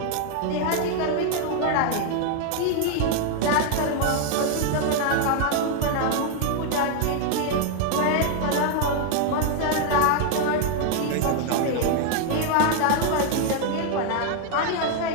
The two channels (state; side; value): different; both; correlation 0.00